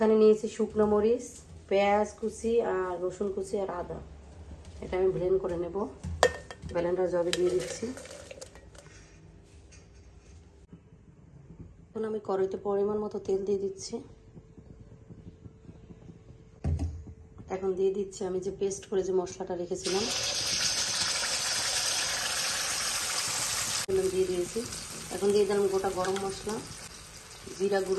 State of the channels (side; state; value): both; identical; correlation 1.00